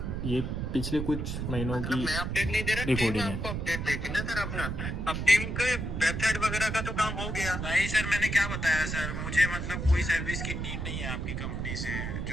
ये पिछले कुछ महीनों की मैं अपडेट नहीं दे रहा, रिकॉर्डिंग है। आपको अपडेट देगी ना सर अपना। अब टीम के वेबसाइट वगैरह का तो काम हो गया। नहीं सर, मैंने क्या बताया सर, मुझे मतलब कोई सर्विस की नीड नहीं है आपकी कंपनी से।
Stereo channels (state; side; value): noise; right; rumble, 3 dB below the sound